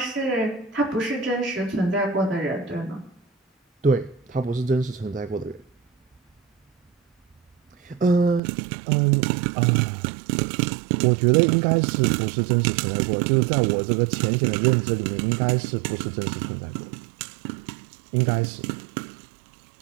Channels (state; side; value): drops out; left; at 8.4 s